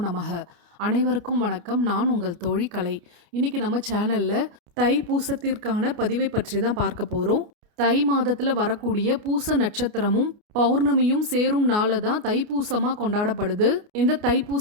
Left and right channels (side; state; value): left; late; 29 ms